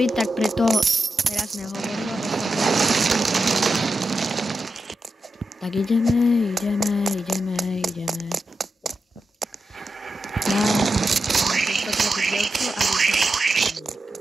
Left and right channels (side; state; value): both; normal; correlation 0.89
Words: tak preto teraz nehovorím. Tak ideme.